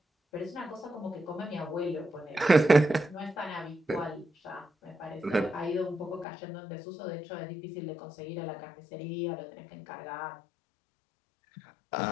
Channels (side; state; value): right; drops out; at 6.2 s